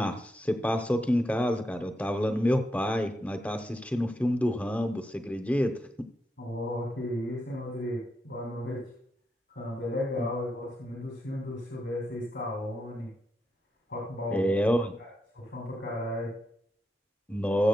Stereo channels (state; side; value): normal; both; correlation 0.84